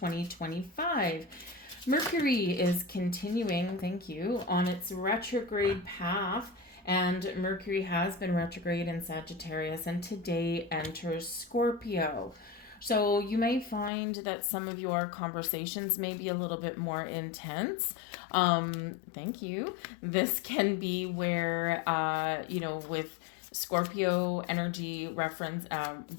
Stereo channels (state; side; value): drops out; right; at 13.9 s